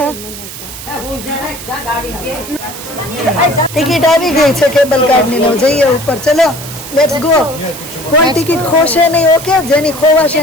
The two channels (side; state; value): right; noise; hiss, 12 dB below the sound